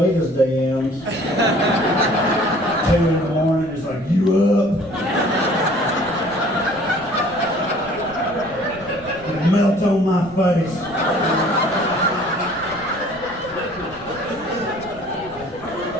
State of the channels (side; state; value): right; noise; rumble, 20 dB below the sound